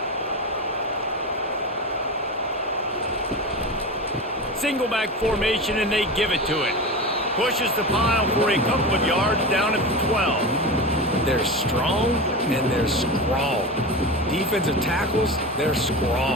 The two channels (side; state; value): both; normal; correlation 0.25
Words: Single back formation, and they give it to it. Pushes the pile for a couple of yards down at the 12. They're strong and they're scrawl. Defensive tackles, they're